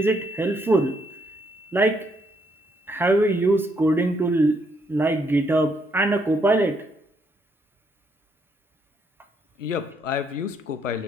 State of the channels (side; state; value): both; normal; correlation 0.73